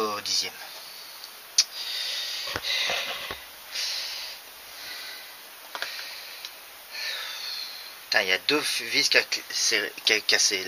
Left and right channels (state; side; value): identical; both; correlation 1.00